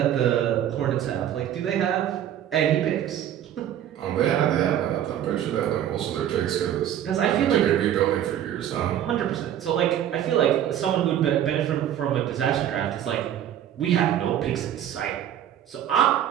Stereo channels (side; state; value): left; quieter; 10.7 dB